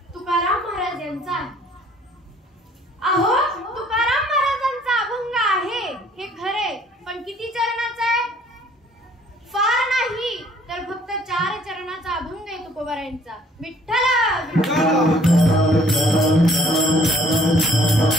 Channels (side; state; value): both; normal; correlation 0.60